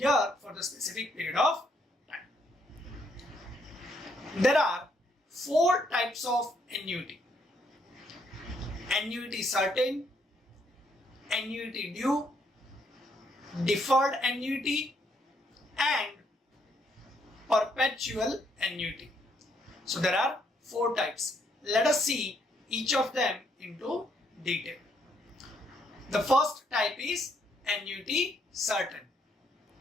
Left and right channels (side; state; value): both; normal; correlation 0.72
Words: for the specific period of time. There are 4 types of annuity: annuity certain, annuity due, deferred annuity, and perpetual annuity. So there are 4 types. Let us see each of them into detail. The first type is annuity certain.